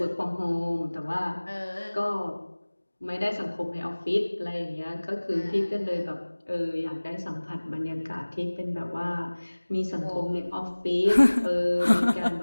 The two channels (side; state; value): both; inverted; correlation -1.00